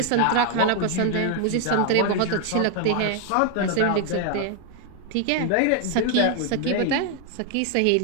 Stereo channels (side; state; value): both; different; correlation 0.00